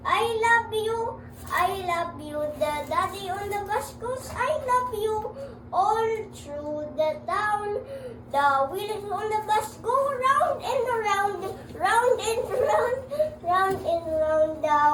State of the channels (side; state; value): both; identical; correlation 1.00